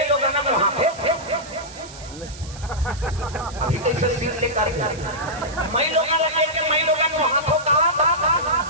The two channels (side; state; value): right; noise; hiss, 17 dB below the sound